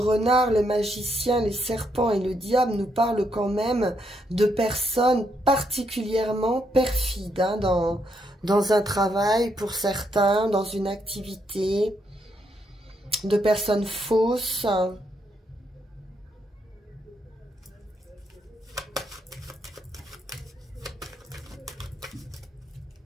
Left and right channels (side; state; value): both; normal; correlation 0.76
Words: le magicien, les serpents et le diable nous parlent quand même de personnes particulièrement perfides hein, dans un travail pour certains, dans une activité, de personnes fausses.